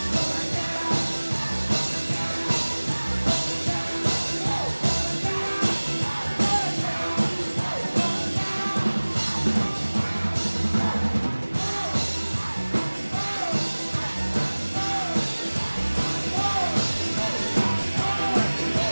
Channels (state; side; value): inverted; both; correlation -1.00